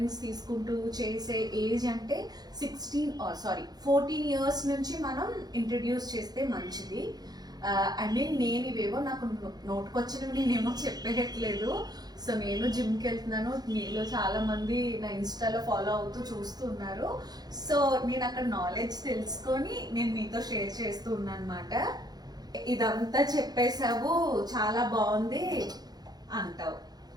తీసుకుంటూ చేసే ఏజ్ అంటే 14 years నుంచి మనం ఇంట్రడ్యూస్ చేస్తే మంచిది. నేను ఇవేవో నాకు నోటుకొచ్చినవి నేనేమో చెప్పేయట్లేదు. సో నేను జిమ్కి వెళ్తున్నాను, మీలో చాలా మంది నా ఇన్స్టాలో ఫాలో అవుతూ చూస్తూ ఉన్నారు. సో నేను అక్కడ నాలెడ్జ్ తెలుసుకొని నేను మీతో షేర్ చేస్తూ ఉన్నాను అనమాట. ఇదంతా చెప్పేసావు, చాలా బాగుంది అంటావు.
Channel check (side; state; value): left; late; 0.19 ms